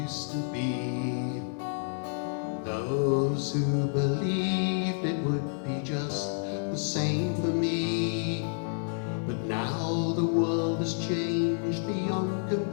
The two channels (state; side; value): silent; right; digital silence